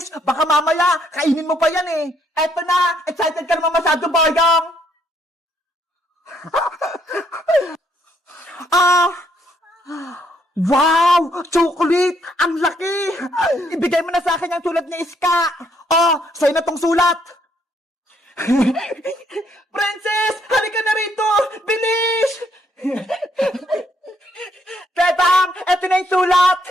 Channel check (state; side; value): normal; both; correlation 0.70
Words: Baka mamaya, kainin mo pa yan eh. Eto na. Excited ka naman masyado, Boyong. Wow! Chocolate! Ang laki! Ibigay mo na sa akin yung sulat ni Iska. Oh, sa'yo na tong sulat. Princess! Halika na rito! Bilis! Bebang! Eto na yung sulat!